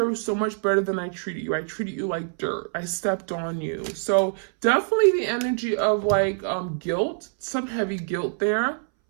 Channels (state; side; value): silent; left; 62 dB below the other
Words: so much better than I treated you. I treated you like dirt. I stepped on you. So definitely the energy of like guilt, some heavy guilt there.